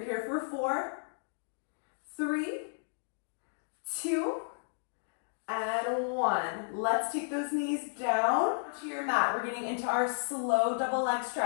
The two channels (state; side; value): silent; right; digital silence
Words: here for 4, 3, 2, and 1. Let's take those knees down to your mat. We're getting into our slow double leg